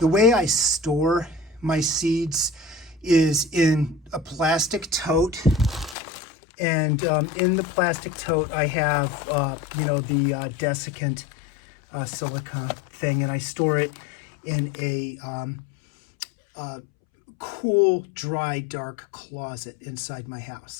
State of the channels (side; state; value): right; drops out; at 6.0 s